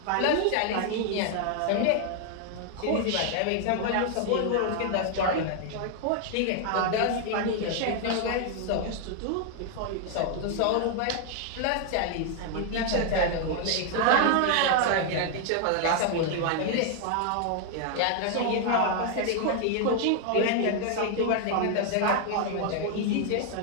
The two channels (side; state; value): both; different; correlation 0.00